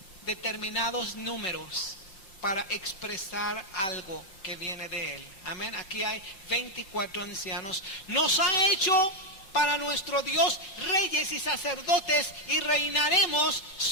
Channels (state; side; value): late; right; 5.7 ms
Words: determinados números para expresar algo que viene de Él. Amén. Aquí hay 24 ancianos. Nos ha hecho para nuestro Dios reyes y sacerdotes y reinaremos